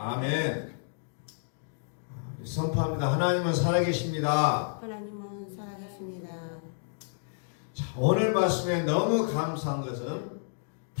선포합니다. 하나님은 살아계십니다. 하나님은 살아계십니다. 자, 오늘 말씀에 너무 감사한 것은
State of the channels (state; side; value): silent; right; digital silence